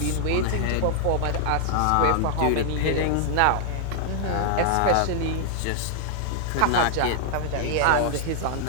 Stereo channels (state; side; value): different; both; correlation -0.01